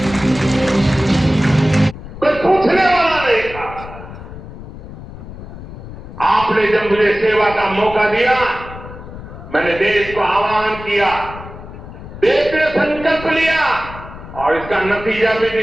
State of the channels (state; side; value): noise; left; rumble, 13 dB below the sound